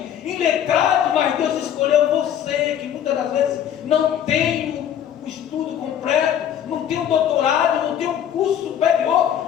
iletrado, mas Deus escolheu você, que muitas das vezes não tem o estudo completo, não tem um doutorado, não tem um curso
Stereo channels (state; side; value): quieter; right; 9.8 dB